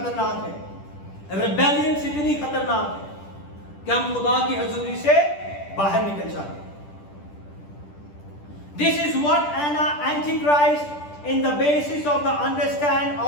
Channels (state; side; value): late; right; 10 ms